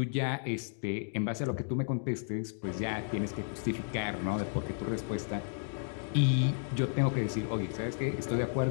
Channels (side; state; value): right; silent; digital silence